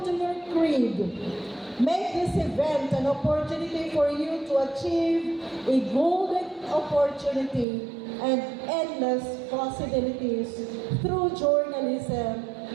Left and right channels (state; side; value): drops out; left; at 7.7 s